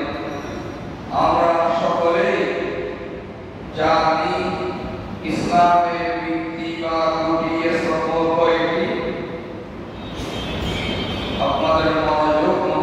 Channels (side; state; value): both; identical; correlation 1.00